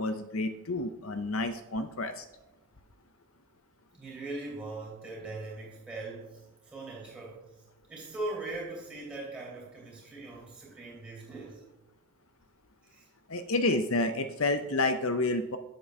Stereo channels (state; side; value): normal; both; correlation 0.06